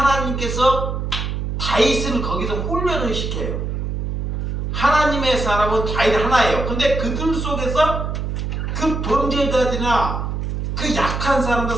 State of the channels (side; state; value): right; noise; hum, 3 dB below the sound